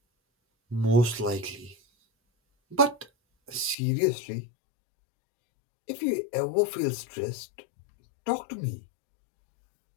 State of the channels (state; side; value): drops out; right; at 3.8 s